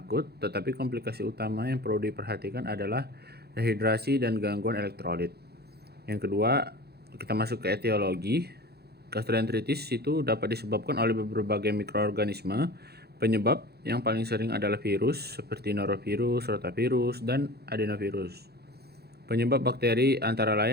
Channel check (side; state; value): left; late; 0.47 ms